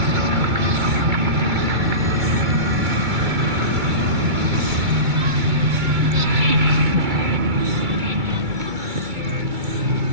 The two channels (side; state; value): left; late; 2.2 ms